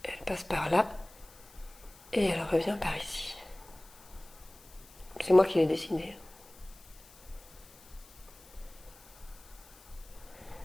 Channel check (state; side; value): noise; left; hiss, 23 dB below the sound